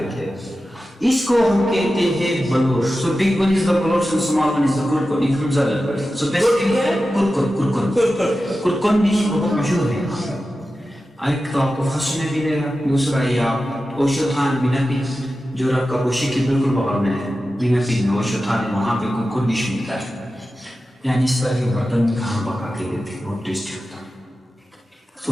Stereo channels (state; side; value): normal; both; correlation 0.93